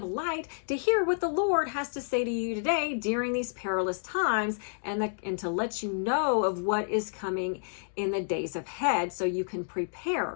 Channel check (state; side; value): silent; right; digital silence